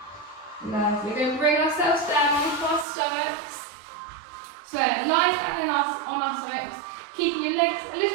Lovely. We're going to bring ourselves down onto our stomachs. So lie down on our stomachs, keeping your legs a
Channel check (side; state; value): left; drops out; at 2.9 s